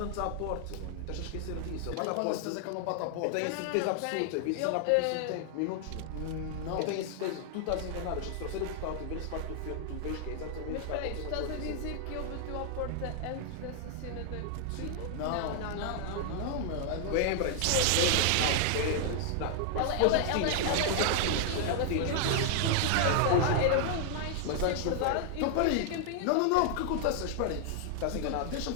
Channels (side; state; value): both; different; correlation 0.00